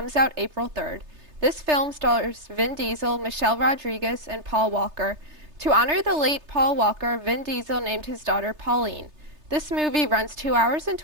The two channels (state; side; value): late; left; 3.3 ms